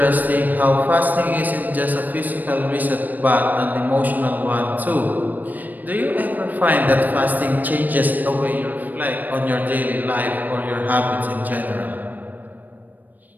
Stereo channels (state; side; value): late; left; 0.085 ms